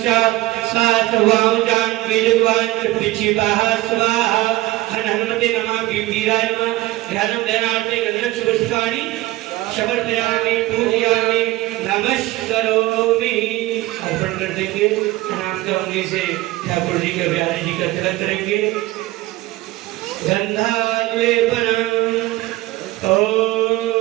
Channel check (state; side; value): quieter; left; 18.2 dB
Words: सात्वां बीजद्वान् पिचिताः स्वाहा। हनुमते नमः। वीराय नमः। ध्यानं ध्यानार्थे गंधर्व पुष्पाणि समर्पयामि पूजयामि नमस्करोमि। अर्पण कर देंगे। प्रणाम करने से ठाकुर जी का बिहारी जी का तिलक करेंगे। गंधालेपनम्